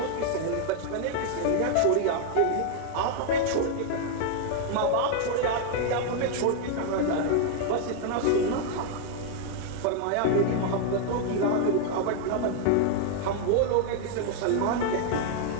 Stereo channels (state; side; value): different; both; correlation 0.00